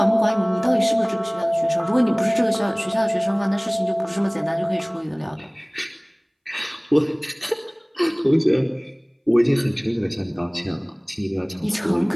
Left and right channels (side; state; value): both; identical; correlation 1.00